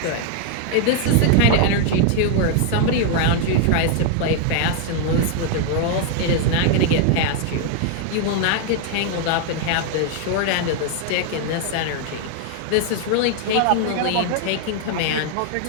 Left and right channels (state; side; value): different; both; correlation 0.00